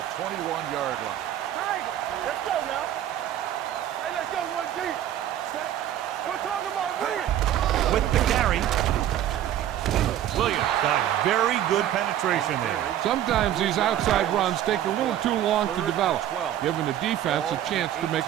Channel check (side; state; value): left; quieter; 11.7 dB